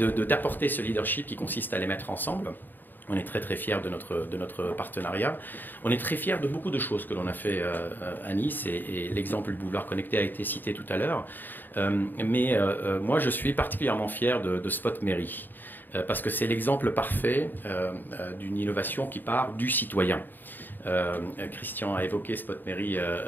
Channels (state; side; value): late; right; 0.091 ms